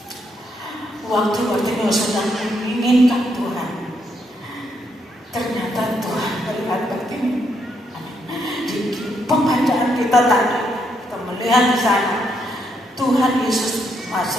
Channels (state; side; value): normal; both; correlation 0.76